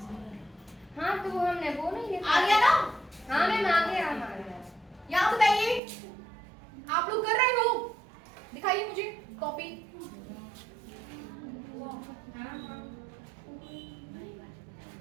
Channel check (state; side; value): drops out; left; at 5.8 s